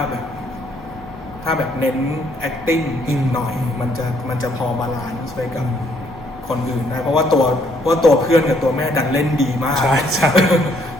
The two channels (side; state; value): left; noise; hum, 29 dB below the sound